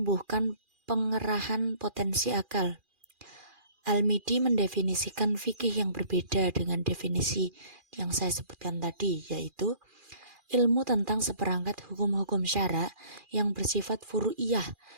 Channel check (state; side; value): late; left; 2.4 ms